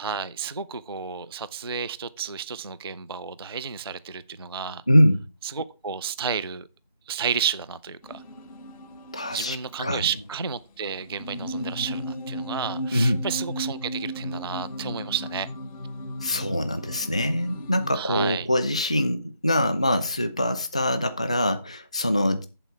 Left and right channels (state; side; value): inverted; both; correlation -0.72